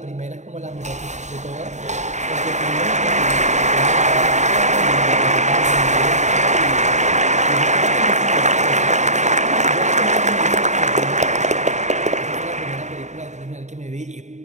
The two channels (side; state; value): left; late; 0.34 ms